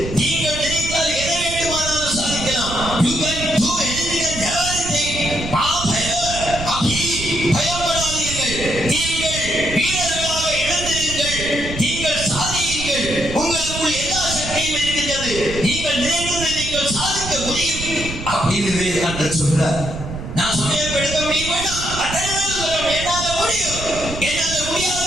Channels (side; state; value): right; noise; rumble, 8 dB below the sound